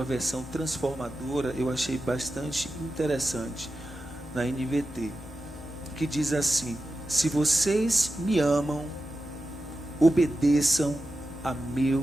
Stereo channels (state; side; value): normal; both; correlation 0.91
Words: versão transformadora, eu achei bastante interessante, na NVT, que diz assim: se vocês me amam, obedeçam a